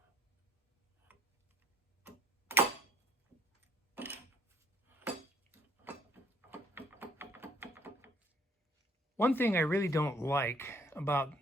One thing I really don't like about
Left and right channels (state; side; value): normal; both; correlation 0.61